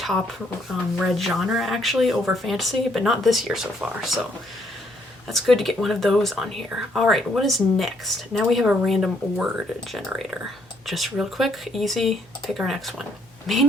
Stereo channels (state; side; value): normal; both; correlation 0.70